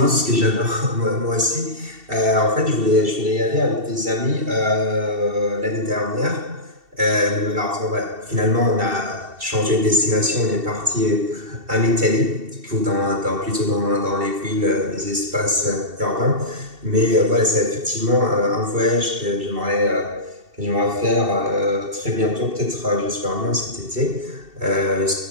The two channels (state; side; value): late; left; 2.7 ms